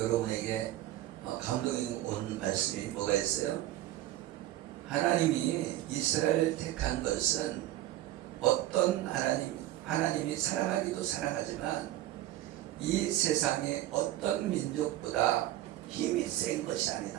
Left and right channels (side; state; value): left; quieter; 14.5 dB